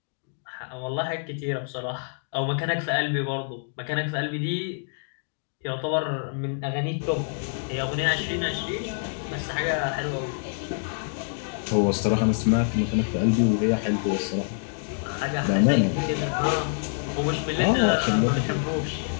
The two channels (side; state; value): right; silent; digital silence